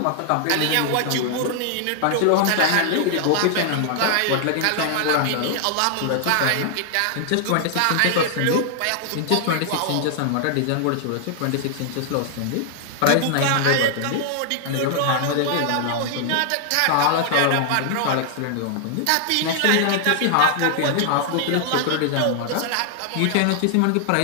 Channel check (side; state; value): both; different; correlation 0.00